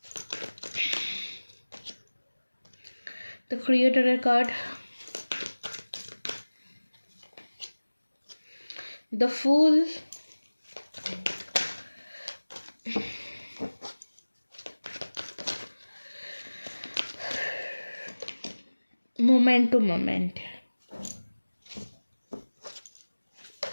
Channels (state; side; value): inverted; both; correlation -1.00